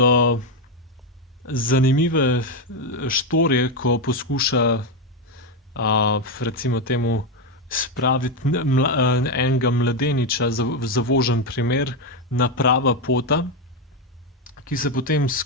zanimive štorije, ko poskuša recimo temu spraviti enega mladeniča, zavožen primer, na prava pota, ki se potem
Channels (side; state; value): both; normal; correlation 0.07